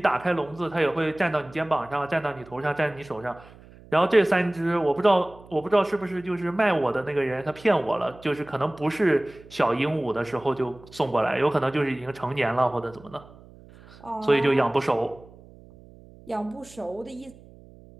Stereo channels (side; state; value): right; noise; hum, 22 dB below the sound